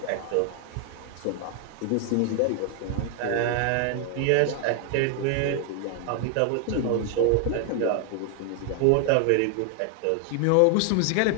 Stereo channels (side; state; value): both; different; correlation 0.00